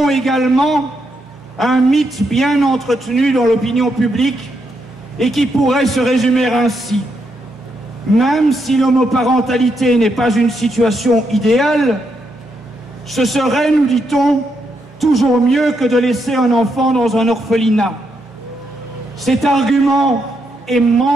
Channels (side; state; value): both; normal; correlation 0.80